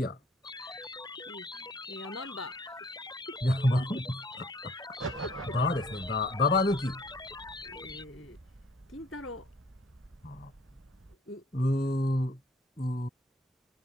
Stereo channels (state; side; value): normal; both; correlation 0.59